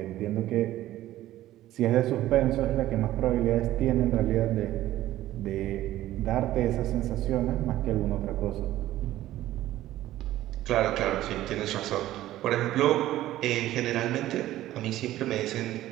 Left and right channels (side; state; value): left; quieter; 14.5 dB